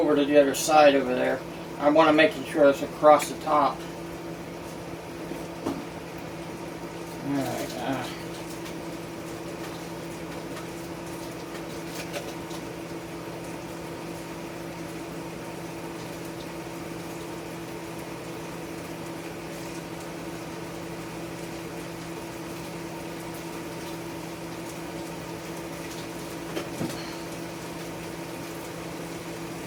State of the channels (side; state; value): both; identical; correlation 1.00